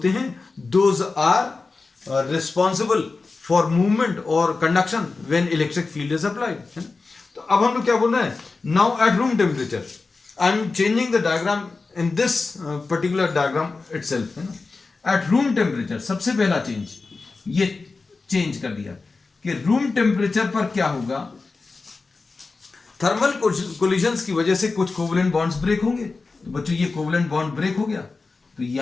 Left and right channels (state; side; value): quieter; right; 4.0 dB